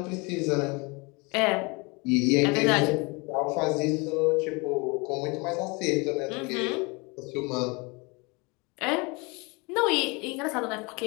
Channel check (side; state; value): right; quieter; 28.1 dB